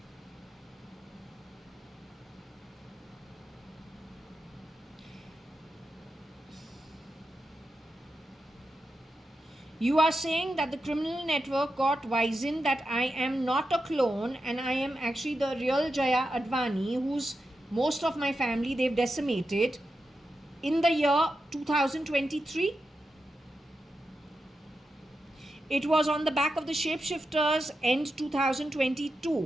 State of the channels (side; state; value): both; normal; correlation 0.89